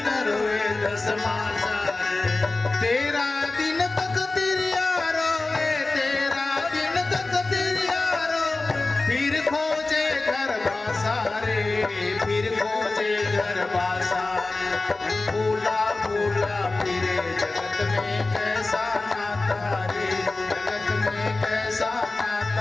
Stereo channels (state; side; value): quieter; right; 3.3 dB